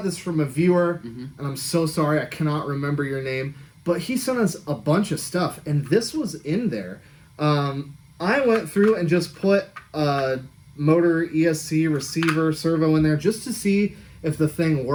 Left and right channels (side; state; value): both; identical; correlation 1.00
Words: this from a viewer, and I'm so sorry I cannot remember your name, but he sent us a bunch of stuff, and this was in there. I went through and just put a motor, ESC, receiver, servo in there just to see if the thing